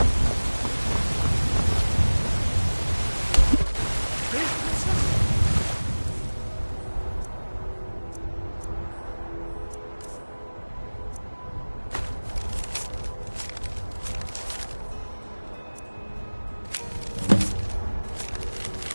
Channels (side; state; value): both; inverted; correlation -1.00